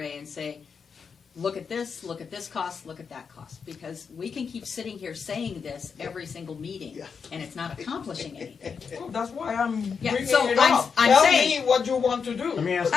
and say, look at this cost, look at that cost. Because we can keep sitting here saying this every single meeting, and it's not accomplishing anything. Well, that's why I'm Yeah, bringing so it I'm up. saying- Tell me what you want to do. Let me ask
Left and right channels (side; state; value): right; quieter; 6.0 dB